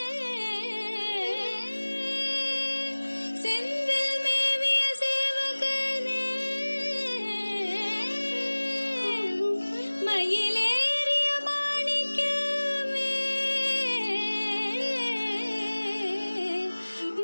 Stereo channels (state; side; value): inverted; both; correlation -1.00